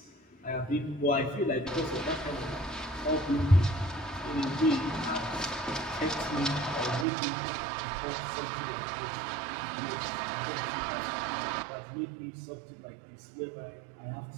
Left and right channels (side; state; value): left; drops out; at 7.1 s